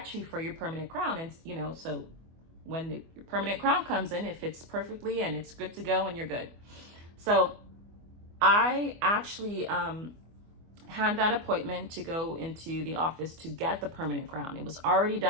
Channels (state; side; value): late; left; 24 ms